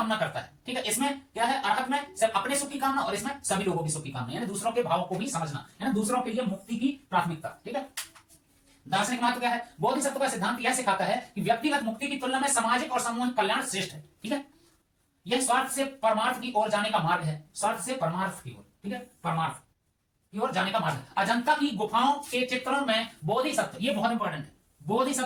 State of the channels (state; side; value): identical; both; correlation 1.00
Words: करता है। ठीक है, इसमें क्या है? अरहत में सिर्फ अपने सुख की कामना और इसमें सभी लोगों की सुख की कामना, यानी दूसरों के भाव को भी समझना, यानी दूसरों के लिए मुक्ति की प्राथमिकता। ठीक है, दार्शनिक महत्व क्या है? बोधिसत्व का सिद्धांत यह सिखाता है कि व्यक्तिगत मुक्ति की तुलना में सामाजिक और सामूहिक कल्याण श्रेष्ठ है। ठीक है, यह स्वार्थ से परमार्थ की ओर जाने का मार्ग है, स्वार्थ से परमार्थ की ओर। ठीक है, परमार्थ की ओर जाने का मार्ग है। अजंता की गुफाओं के चित्रों में बोधिसत्व, ये बहुत इंपॉर्टेंट है,